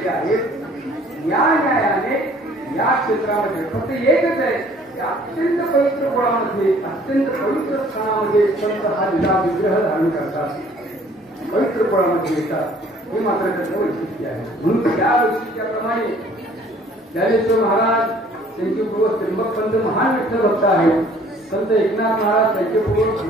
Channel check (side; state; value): both; normal; correlation 0.56